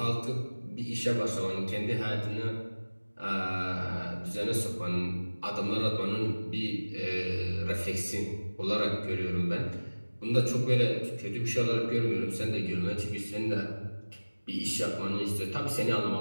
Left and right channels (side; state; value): both; inverted; correlation -1.00